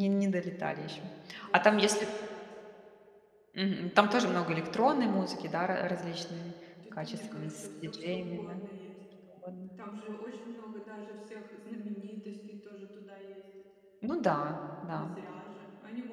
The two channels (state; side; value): identical; both; correlation 1.00